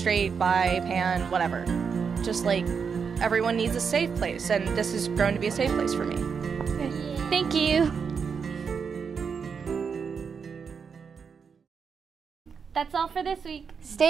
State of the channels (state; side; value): quieter; left; 6.1 dB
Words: bi, pan, whatever. Just like everyone needs a safe place, and this has grown to be a safe place for me. Okay. Thank you. That's all for this week.